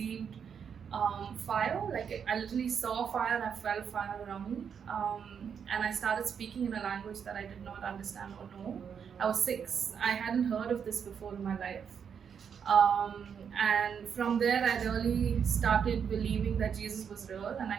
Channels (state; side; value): quieter; left; 7.3 dB